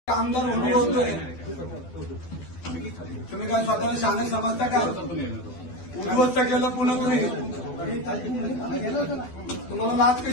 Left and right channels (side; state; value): right; late; 12 ms